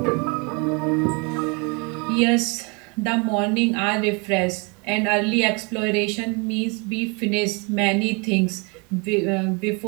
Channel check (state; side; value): quieter; left; 31.5 dB